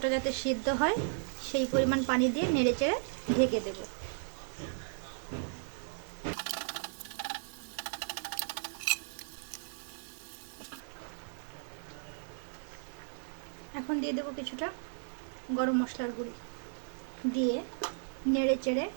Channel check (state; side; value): silent; left; digital silence